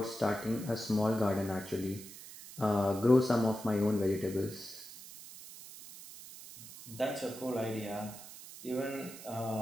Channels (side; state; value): right; noise; hiss, 15 dB below the sound